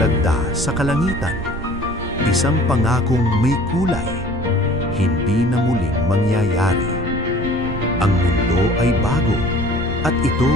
sa kalangitan, isang pangakong may kulay, hindi na muling mangyayari. Ang mundo ay bago, at ito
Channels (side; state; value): right; noise; rumble, 11 dB below the sound